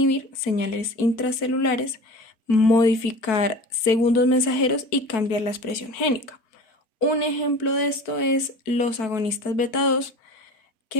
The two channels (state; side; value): late; right; 4.5 ms